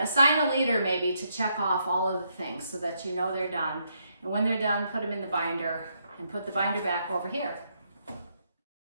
a leader maybe to check off all of the things so that you know they're done. And when they're done, put them in the binder and put the binder back over here.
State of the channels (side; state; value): both; inverted; correlation -0.77